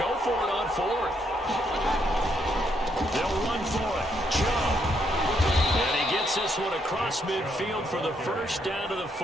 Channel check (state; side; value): normal; both; correlation 0.75